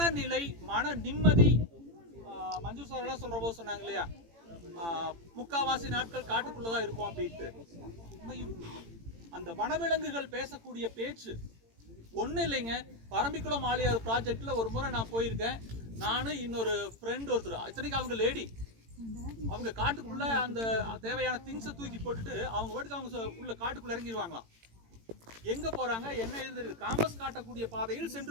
மன நிம்மதி, மஞ்சு சார் எல்லாம் சொல்ற போது சொன்னாங்க இல்லையா, முக்காவாசி நாட்கள் காட்டுக்குள்ளதான் இருக்கும் அப்படின்ட்டு. அந்த வனவிலங்குகள் பேசக்கூடிய பேச்சு ஒன்றும் இல்லைங்க. பரம்பிக்குளம் ஆழியார் ப்ராஜெக்ட்ல ஒரு முறை நான் போயிருக்கேன். நானும் இன்னொரு ஃப்ரெண்ட் ஒருத்தர், இத்தனைக்கு அவங்க லேடி, அவங்க காட்டுக்குள்ள அந்த தேவையான திங்ஸை தூக்கி போட்டுட்டு அவங்க பாட்டுக்கு அவங்க உள்ள காட்டுக்குள்ள இறங்கிடுவாங்களாம். எங்க போறாங்க, என்ன எழுதுறது, காம்பஸ் காட்டக்கூடிய பாதையில் சென்று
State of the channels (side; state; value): left; late; 18 ms